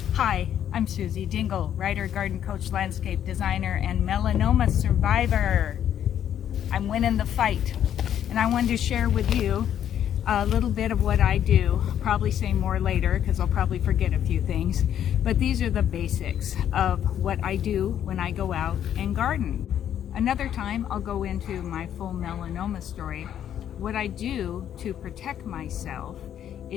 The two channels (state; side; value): quieter; right; 10.1 dB